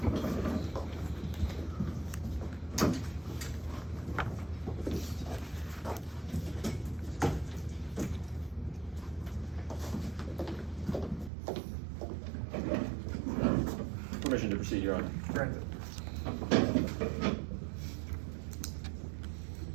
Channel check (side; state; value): left; drops out; at 11.3 s